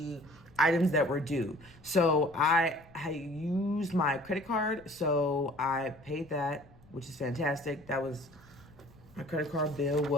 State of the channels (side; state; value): left; noise; rumble, 26 dB below the sound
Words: items that were due. So I used my credit card, so I paid that, which is fantastic. That was, my credit card bill